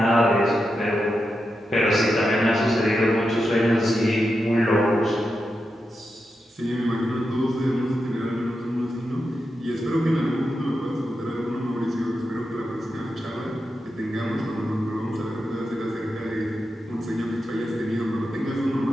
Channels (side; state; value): both; normal; correlation 0.88